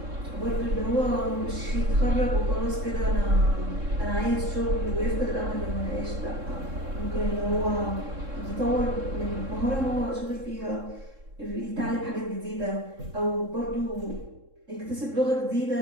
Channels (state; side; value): late; left; 3.7 ms